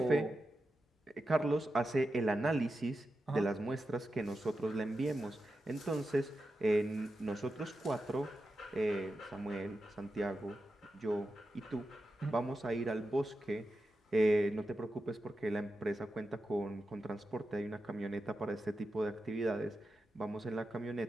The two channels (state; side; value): normal; both; correlation 0.90